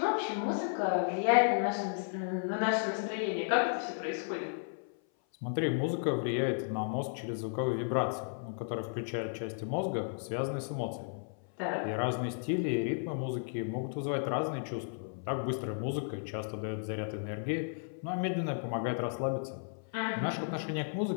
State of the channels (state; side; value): silent; right; 55 dB below the other